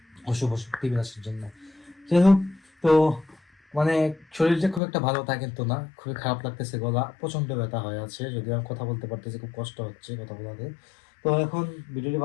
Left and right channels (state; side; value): drops out; right; at 4.8 s